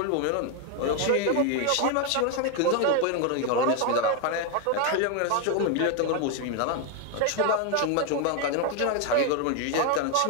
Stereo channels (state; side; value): different; both; correlation 0.01